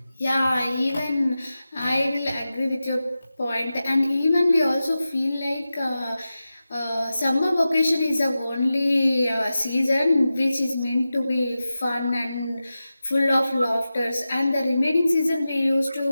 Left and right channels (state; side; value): inverted; both; correlation -0.93